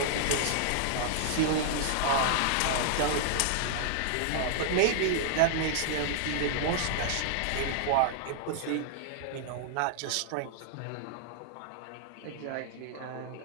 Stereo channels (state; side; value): different; both; correlation -0.01